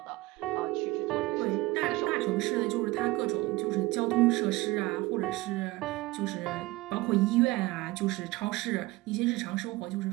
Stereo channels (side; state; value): left; quieter; 20.3 dB